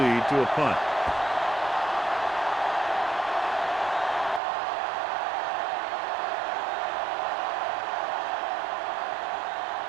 to a punt.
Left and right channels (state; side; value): drops out; left; at 4.4 s